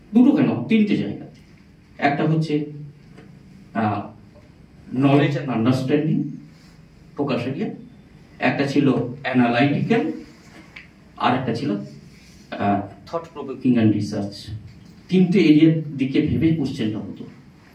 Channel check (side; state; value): both; identical; correlation 1.00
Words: দুটো কেন, তিনটে জায়গা। একটা হচ্ছে knowledge and understanding focus area, একটা ছিল অ্যানালাইটিক্যাল, আর একটা ছিল থট প্রভোকিং অ্যান্ড রিসার্চ। তিনটে এরিয়ার দিকে ভেবে কোশ্চেনটা হতো